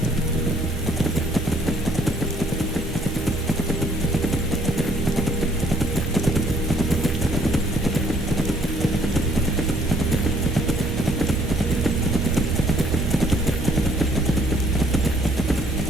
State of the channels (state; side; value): normal; both; correlation 0.62